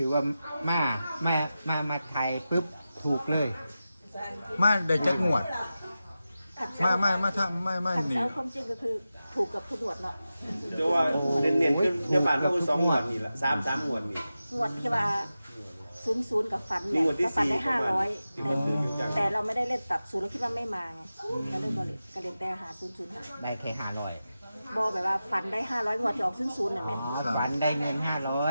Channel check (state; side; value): inverted; both; correlation -0.93